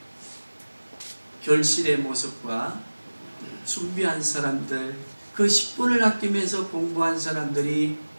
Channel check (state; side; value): inverted; both; correlation -1.00